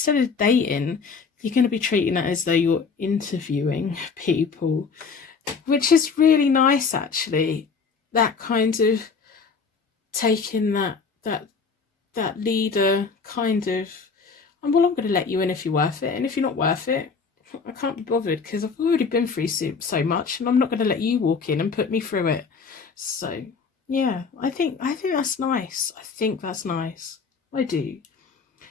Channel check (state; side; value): quieter; right; 5.2 dB